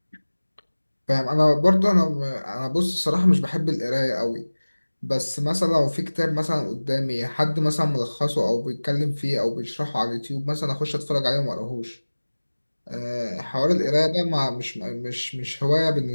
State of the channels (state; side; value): inverted; both; correlation -1.00